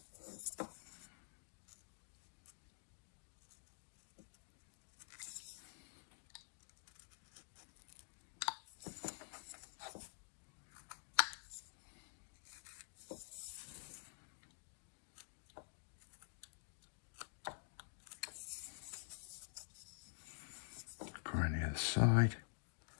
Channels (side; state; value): right; silent; digital silence